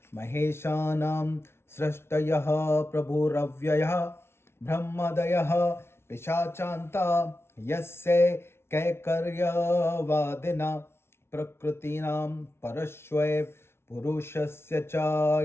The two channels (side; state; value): right; late; 0.12 ms